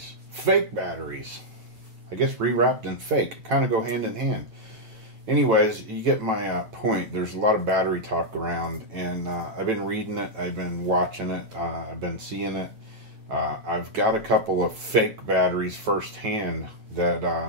fake batteries. I guess rewrapped and fake kind of go hand in hand. Anyways, you get my point. There's a lot of battery talk around, and I've been reading it, I've been watching it, I've been seeing it. I've got a couple of fake batteries firsthand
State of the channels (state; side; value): late; left; 9.0 ms